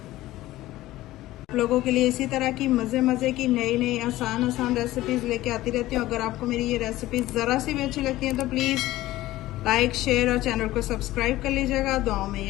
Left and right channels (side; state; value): right; quieter; 16.4 dB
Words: लोगों के लिए इसी तरह की मज़े की नई आसान रेसिपीज़ लेके आती रहती हूँ। अगर आपको मेरी ये रेसिपीज़ ज़रा सी भी अच्छी लगती हैं तो प्लीज़ लाइक, शेयर और चैनल को सब्सक्राइब कर लीजिएगा। दुआओं में